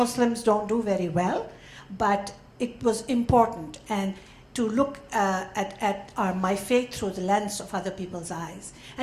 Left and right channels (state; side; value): identical; both; correlation 1.00